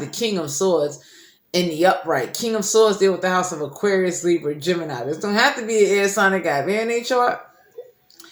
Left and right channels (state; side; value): identical; both; correlation 1.00